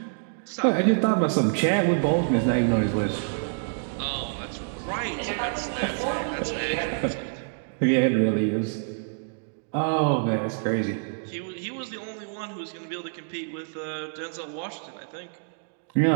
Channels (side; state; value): left; silent; digital silence